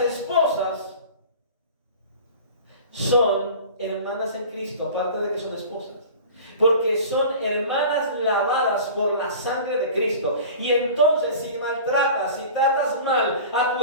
esposas son hermanas en Cristo, aparte de que son esposas. Porque son hermanas lavadas por la sangre de Cristo. Y entonces si maltratas, si tratas mal a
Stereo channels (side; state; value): both; inverted; correlation -0.40